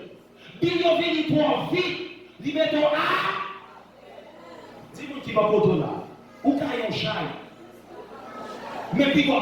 Bil yo vini toi vite, li mettons à. Dis-moi qui va pour toi là. Ou caillon chai. Mais puis quoi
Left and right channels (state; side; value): identical; both; correlation 1.00